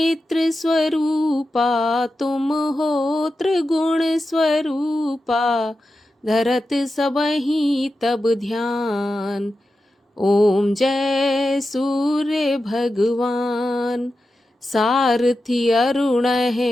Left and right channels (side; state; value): both; normal; correlation 0.91